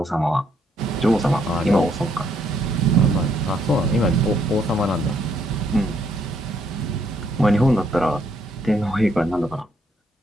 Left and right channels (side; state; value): both; normal; correlation 0.71